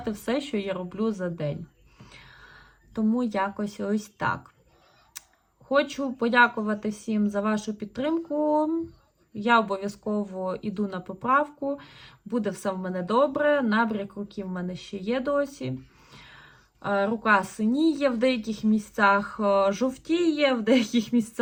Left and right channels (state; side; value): identical; both; correlation 1.00